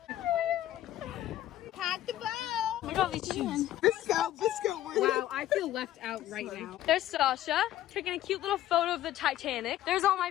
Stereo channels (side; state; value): right; quieter; 13.3 dB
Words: Pack the bow. Look at all these shoes. Wow, I feel left out right now. There's Sasha taking a cute little photo of the Titanic. There's all my